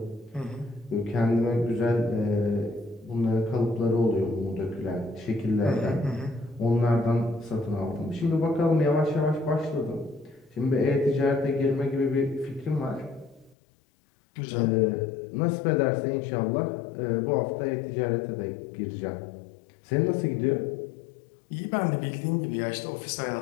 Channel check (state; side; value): drops out; right; at 13.6 s